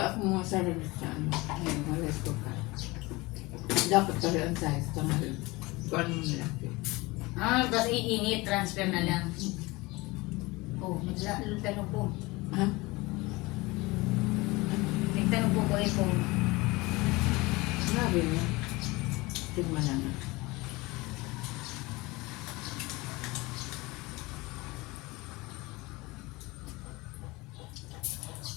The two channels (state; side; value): quieter; right; 22.7 dB